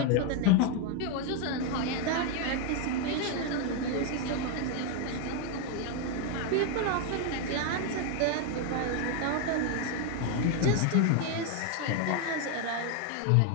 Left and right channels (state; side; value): different; both; correlation 0.01